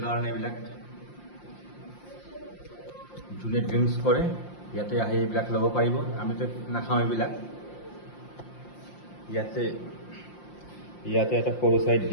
কাৰণে এইবিলাক, যোনে ড্ৰিংকছ কৰে ইয়াতে আহি এইবিলাক ল'ব পাৰিব। আমিতো নাখাওঁ এইবিলাক। ইয়াতে এটা সৰু চাইড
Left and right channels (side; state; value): right; late; 5.7 ms